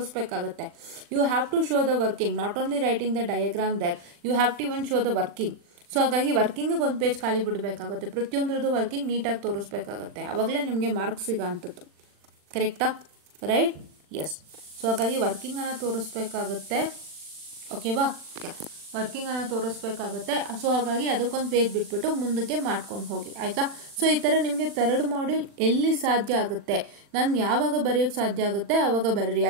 You have to show the working, not only writing the diagram there, you have to even show the working. So ಹಾಗಾಗಿ ವರ್ಕಿಂಗಿಗೆ ಒಂದು ಪೇಜ್ ಖಾಲಿ ಬಿಡಬೇಕಾಗುತ್ತೆ, ಪ್ರತಿಯೊಂದ್ರದ್ದು ವರ್ಕಿಂಗ್ ನೀಟಾಗಿ ತೋರಿಸ್ಬೇಕಾಗುತ್ತೆ, ಆವಾಗಲೇ ನಿಮಗೆ ಮಾರ್ಕ್ಸ್ ಸಿಗೋ ಅಂಥದ್ದು, ಕರೆಕ್ಟಾ? ರೈಟ್? ಎಸ್. ಸೊ ಹಾಗಾಗಿ ವರ್ಕಿಂಗನ್ನು ತೋರಿಸ್ಬೇಕಾಗುತ್ತೆ, ಓಕೆವಾ? ವರ್ಕಿಂಗನ್ನು ತೋರಿಸ್ಬೇಕಾಗುತ್ತೆ. ಸೊ ಹಾಗಾಗಿ ಅದಕ್ಕೊಂದು ಪೇಜ್ ಬಿಟ್ಬಿಟ್ಟು ಮುಂದಕ್ಕೆ ಮಾಡ್ಕೊಂಡು ಹೋಗಿ, ಆಯಿತಾ. ಸೊ ಈ ಥರ ನಿಮಗೆ ಥರ್ಡ್ ಮಾಡ್ಯೂಲ್ ಎಲ್ಲಿ ಸಾಧ್ಯ ಆಗುತ್ತೆ, ನಾನು ಯಾವಾಗ ಬರೆಯೋಕ್ಕೆ ಸಾಧ್ಯ ಆಗುತ್ತೆ ಆವಾಗ ಬರೀರಿ.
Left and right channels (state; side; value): late; left; 40 ms